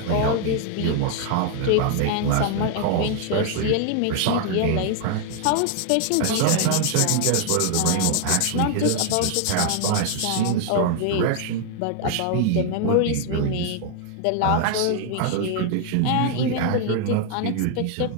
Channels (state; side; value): different; both; correlation 0.00